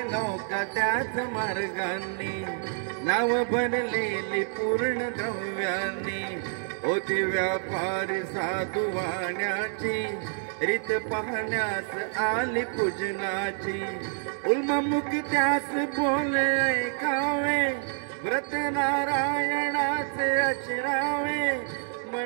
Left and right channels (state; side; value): silent; left; 59 dB below the other